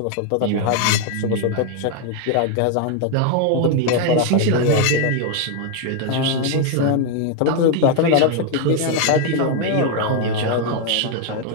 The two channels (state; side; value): different; both; correlation 0.01